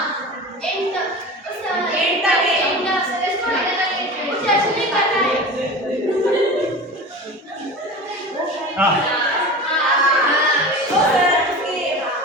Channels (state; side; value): normal; both; correlation 0.33